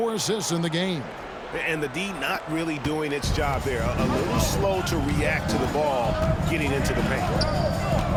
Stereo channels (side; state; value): both; identical; correlation 1.00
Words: assists in the game. And the D not really doing its job there. A little slow to react to the ball getting into the paint.